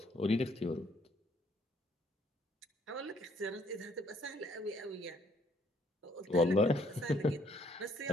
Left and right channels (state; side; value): normal; both; correlation 0.66